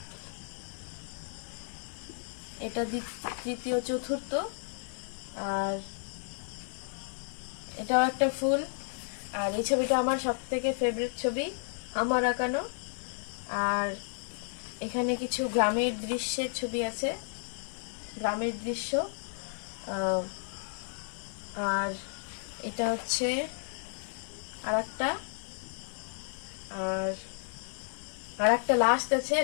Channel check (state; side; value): silent; right; digital silence